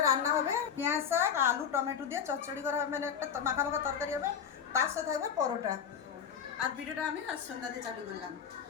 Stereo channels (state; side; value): quieter; right; 7.7 dB